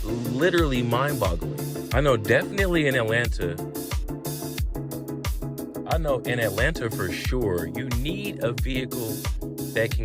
literally mind-boggling. I know definitely in Atlanta for sure, you need a vehicle that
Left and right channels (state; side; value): identical; both; correlation 1.00